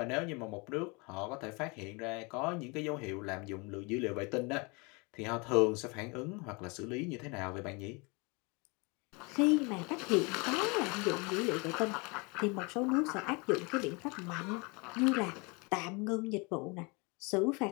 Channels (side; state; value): right; quieter; 29.0 dB